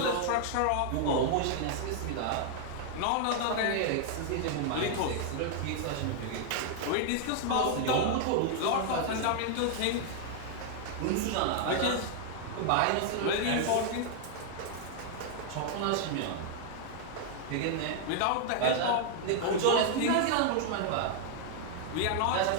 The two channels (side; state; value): both; different; correlation 0.00